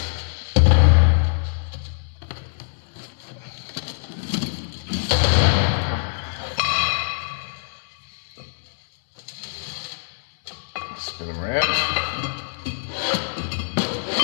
Spin them around.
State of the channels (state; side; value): silent; right; 63 dB below the other